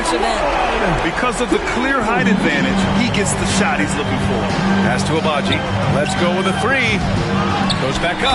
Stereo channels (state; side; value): identical; both; correlation 1.00